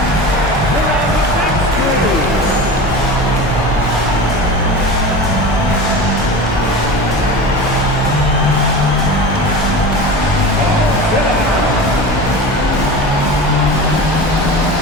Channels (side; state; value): both; normal; correlation 0.31